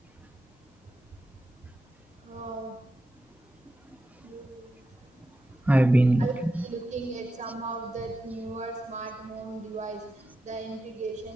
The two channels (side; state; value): both; normal; correlation 0.90